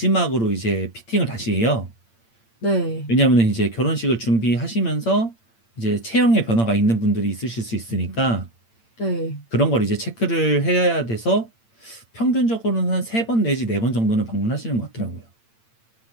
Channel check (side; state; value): right; late; 8.8 ms